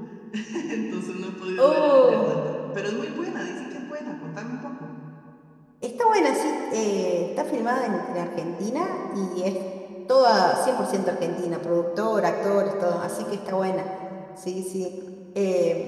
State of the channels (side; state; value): both; identical; correlation 1.00